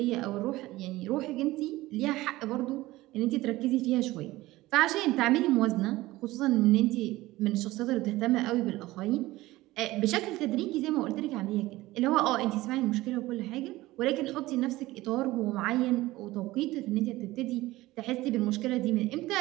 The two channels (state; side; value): quieter; left; 18.1 dB